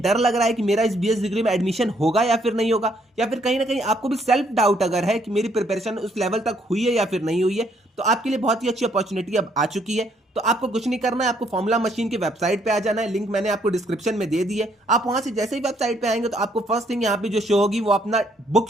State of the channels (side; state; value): both; normal; correlation 0.69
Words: डर लग रहा है कि मेरा इस बीएस डिग्री में एडमिशन होगा या फिर नहीं होगा, या फिर कहीं ना कहीं आपको भी सेल्फ डाउट अगर है कि मेरी प्रिपरेशन उस लेवल तक हुई है या फिर नहीं हुई है, तो आपके लिए बहुत ही अच्छी अपॉर्चुनिटी अब आ चुकी है। तो आपको कुछ नहीं करना है, आपको फॉर्मूला मशीन की वेबसाइट पे आ जाना है। लिंक मैंने आपको डिस्क्रिप्शन में दे दी है। आप वहां से जैसे ही वेबसाइट पे आएंगे तो आपको फर्स्ट थिंग यहाँ पे जो शो होगी वो अपना बुक